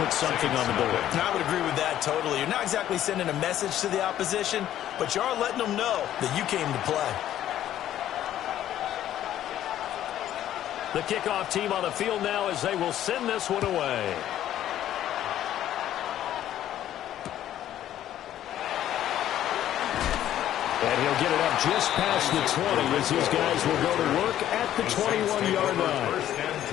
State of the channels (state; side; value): quieter; right; 12.0 dB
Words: something on the board. And I would agree with that totally. You're not exactly sending a message to the opposition, but you are letting them know that you came to play. The kickoff team on the field now as they will send this one away. And he'll get it up just past the 20 as these guys will go to work at the 21-yard line. First and